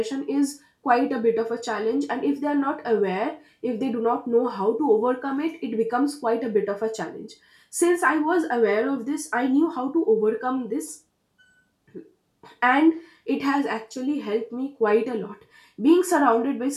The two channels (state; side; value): identical; both; correlation 1.00